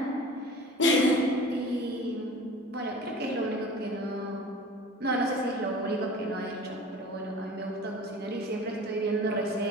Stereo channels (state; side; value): normal; both; correlation 0.41